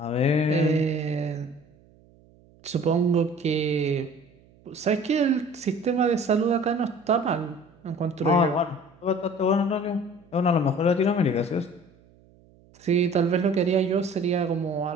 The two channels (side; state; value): right; noise; hum, 29 dB below the sound